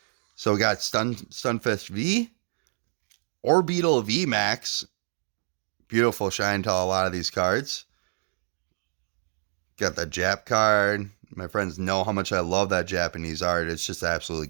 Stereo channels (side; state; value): left; silent; digital silence